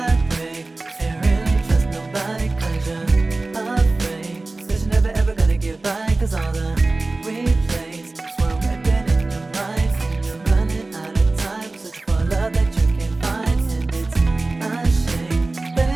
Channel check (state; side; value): quieter; left; 3.2 dB